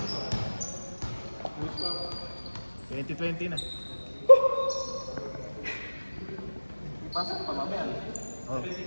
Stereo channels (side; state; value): both; inverted; correlation -1.00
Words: 20-20 na. Ipasok pa mamaya. Oh.